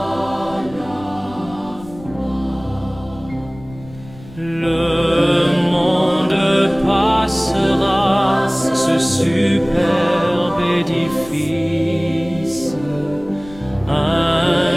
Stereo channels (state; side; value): noise; left; rumble, 19 dB below the sound